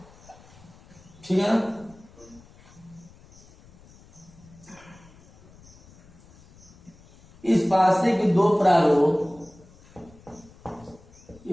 ठीक है ना। इस पासे के दो प्रारूप,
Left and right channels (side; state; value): left; noise; rumble, 25 dB below the sound